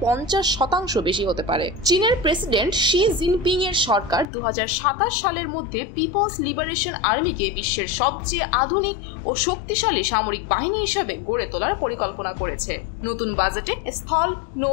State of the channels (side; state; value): right; drops out; at 4.2 s